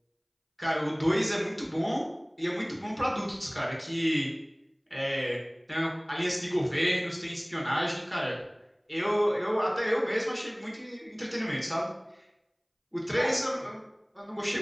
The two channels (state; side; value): identical; both; correlation 1.00